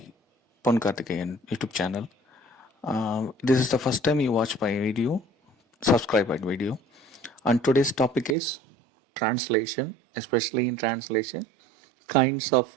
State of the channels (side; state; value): left; drops out; at 8.3 s